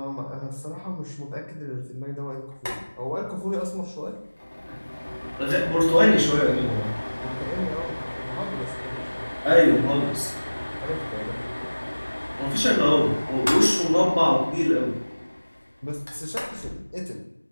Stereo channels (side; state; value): both; inverted; correlation -1.00